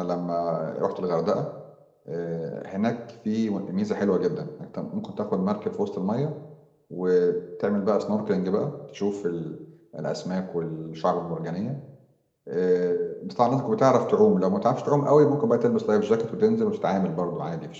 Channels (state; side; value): identical; both; correlation 1.00